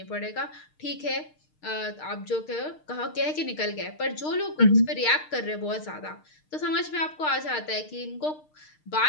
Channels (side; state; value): right; late; 6.5 ms